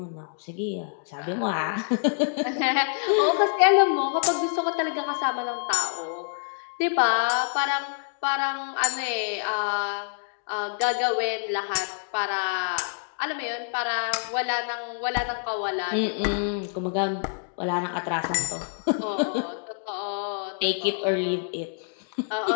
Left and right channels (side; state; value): right; silent; digital silence